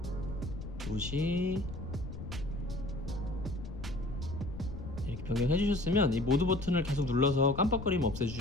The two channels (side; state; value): left; noise; rumble, 9 dB below the sound